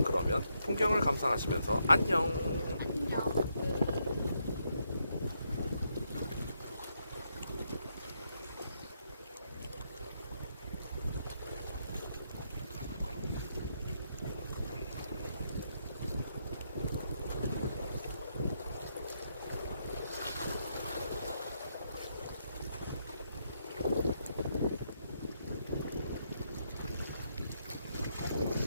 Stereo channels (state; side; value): inverted; both; correlation -0.78